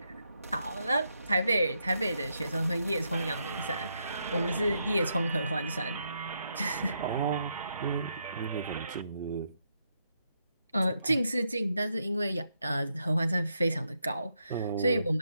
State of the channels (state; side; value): inverted; both; correlation -0.80